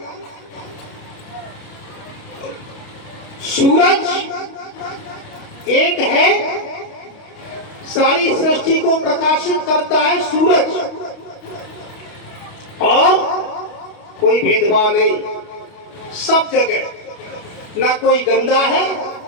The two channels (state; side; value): late; right; 29 ms